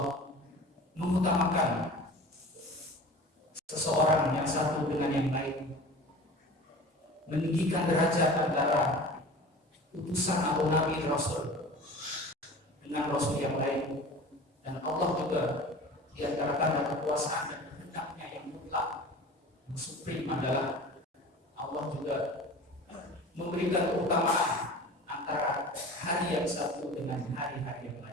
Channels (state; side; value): normal; both; correlation 0.38